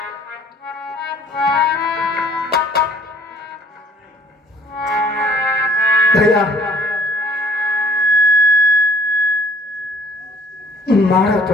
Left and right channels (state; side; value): normal; both; correlation 0.57